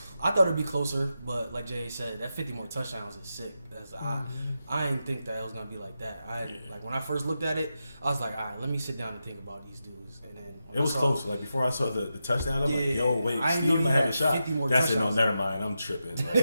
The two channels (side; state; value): both; inverted; correlation -0.89